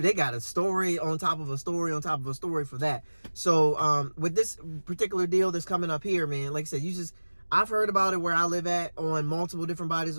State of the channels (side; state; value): both; inverted; correlation -1.00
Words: they got a story on top of a story on top of a story for that. So with this particular deal that's coming up here, man, like I said, I've heard about it where I live at, on multiple different bodies